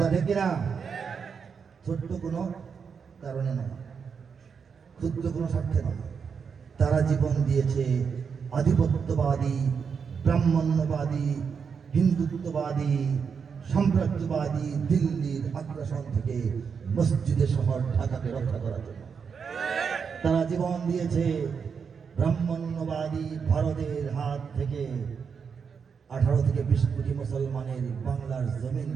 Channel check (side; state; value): left; quieter; 6.2 dB